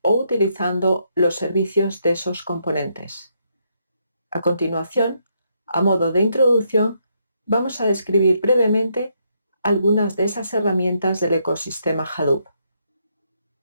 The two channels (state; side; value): inverted; both; correlation -0.76